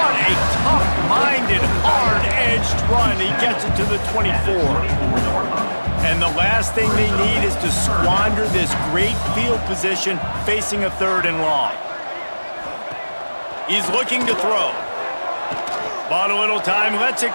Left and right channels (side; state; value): both; inverted; correlation -1.00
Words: a tough-minded, hard-edged run. He gets it to the 24. And the last thing they need is to squander this great field position facing a 3rd and long. He's looking to throw. Bought a little time, lets it